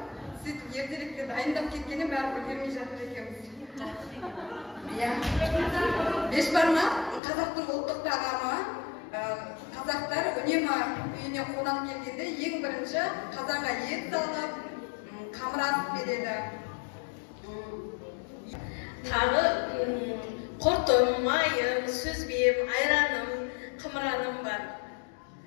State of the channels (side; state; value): right; drops out; at 7.2 s